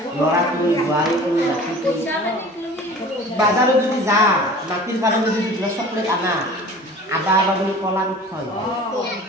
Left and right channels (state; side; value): normal; both; correlation 0.42